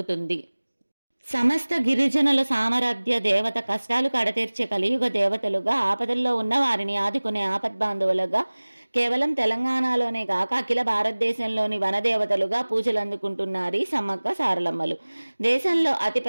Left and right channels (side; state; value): both; inverted; correlation -1.00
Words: సమస్త గిరిజనుల సామర్థ్య దేవత, కష్టాలు కడతీర్చే కలియుగ దేవతలుగా, ఆపదల్లో ఉన్న వారిని ఆదుకునే ఆపద్బాంధవులుగా, కేవలం తెలంగాణలోనే కాక అఖిల భారతదేశంలోని వనదేవతలుగా పూజలు అందుకుంటున్నారు ఈ సమ్మక్క సారలమ్మలు. దేశంలో